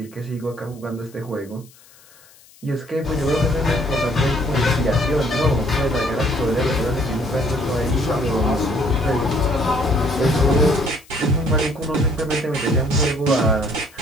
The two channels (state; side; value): noise; left; hiss, 26 dB below the sound